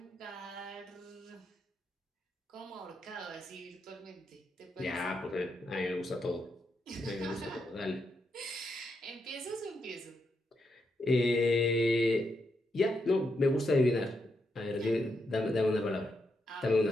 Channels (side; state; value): both; normal; correlation 0.82